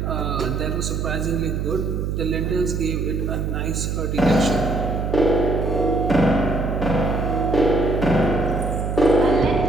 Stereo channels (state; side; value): noise; right; hum, 2 dB below the sound